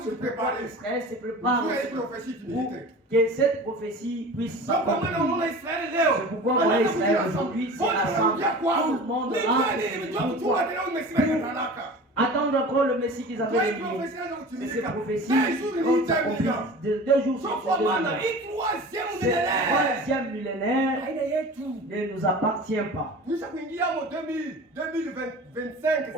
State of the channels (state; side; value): normal; both; correlation 0.37